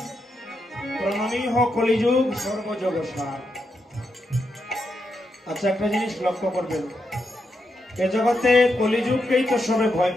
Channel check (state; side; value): normal; both; correlation 0.84